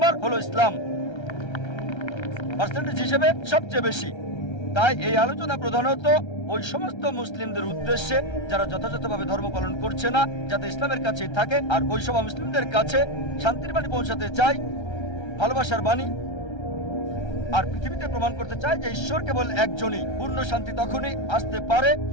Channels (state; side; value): late; right; 1.3 ms